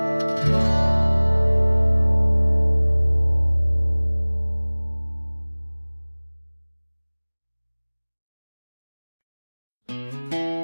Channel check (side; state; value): both; inverted; correlation -1.00